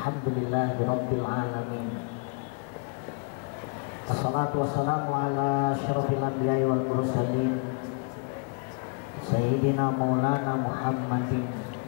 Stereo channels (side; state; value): right; quieter; 33.9 dB